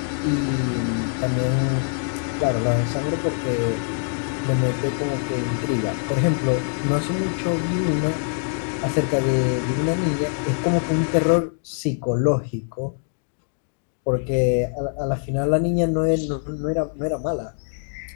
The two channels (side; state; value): right; silent; 63 dB below the other